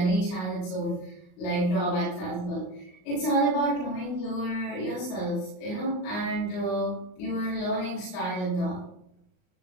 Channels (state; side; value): late; right; 38 ms